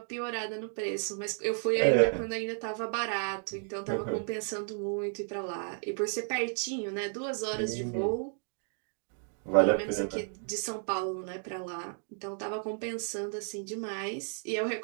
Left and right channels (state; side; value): silent; left; 56 dB below the other